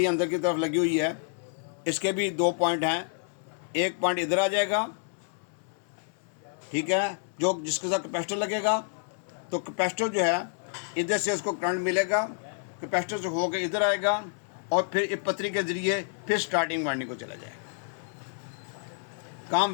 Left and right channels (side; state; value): right; silent; 59 dB below the other